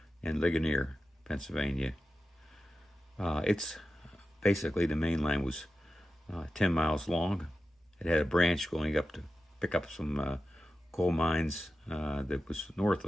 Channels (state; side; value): normal; both; correlation 0.93